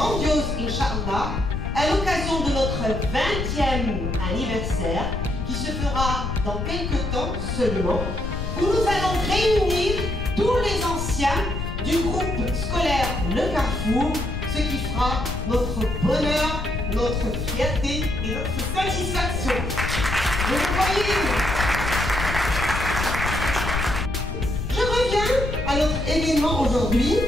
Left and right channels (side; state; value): left; noise; rumble, 4 dB below the sound